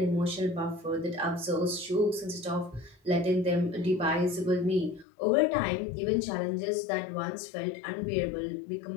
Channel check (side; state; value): right; drops out; at 5.1 s